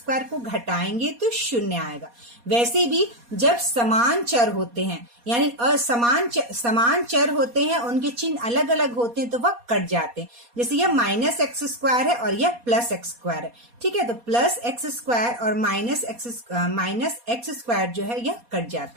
को घटाएंगे तो शून्य आएगा। वैसे भी जब समान चर होते हैं यानी समान चर होते हैं, उनके चिन्ह अलग अलग होते हैं तो वह कट जाते हैं। जैसे यह माइनस एक्स स्क्वायर है और यह प्लस एक्स स्क्वायर है। ठीक है, तो प्लस एक्स स्क्वायर और माइनस एक्स स्क्वायर जो है यह कट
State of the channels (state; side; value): late; left; 4.2 ms